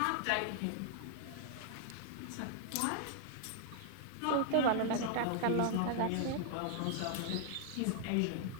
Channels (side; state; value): both; different; correlation 0.00